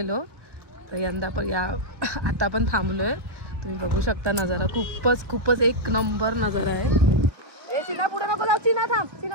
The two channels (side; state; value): left; late; 1.4 ms